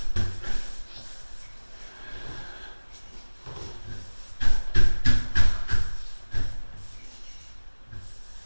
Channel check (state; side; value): inverted; both; correlation -1.00